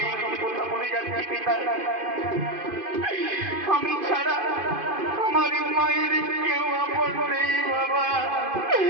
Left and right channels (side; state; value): left; late; 2.5 ms